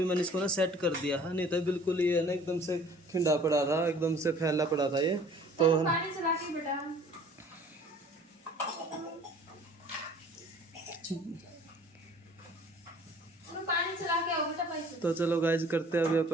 मैंने इसको ना सेट कर दिया है, नहीं तो बिल्कुल ये है ना एकदम से खिंडा पड़ा था, एकदम से फैला पड़ा था ये। तो पानी चला के बेटा। पानी चला के आओ बेटा पैसे। तो चलो गाइज करते हैं अभी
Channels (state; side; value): normal; both; correlation 0.51